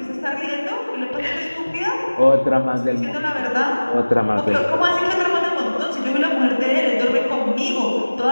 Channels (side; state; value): both; inverted; correlation -1.00